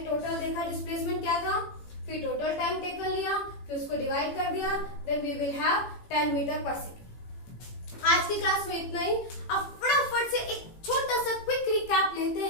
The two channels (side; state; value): right; late; 18 ms